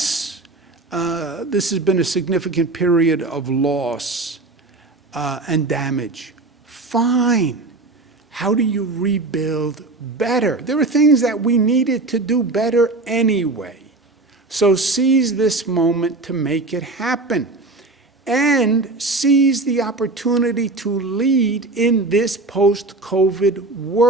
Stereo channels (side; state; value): left; quieter; 3.2 dB